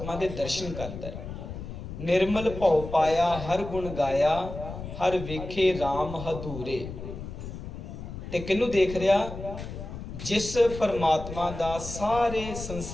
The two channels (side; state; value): left; noise; rumble, 9 dB below the sound